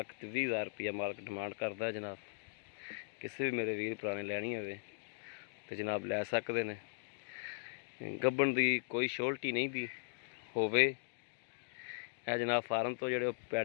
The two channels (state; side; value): silent; right; digital silence